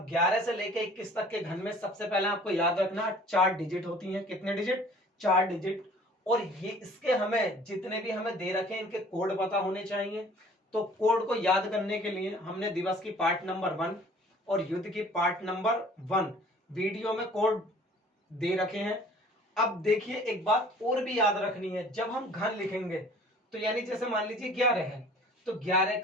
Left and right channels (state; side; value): normal; both; correlation 0.51